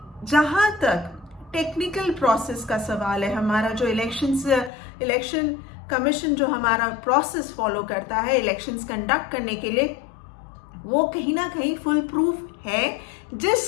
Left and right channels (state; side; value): drops out; right; at 4.7 s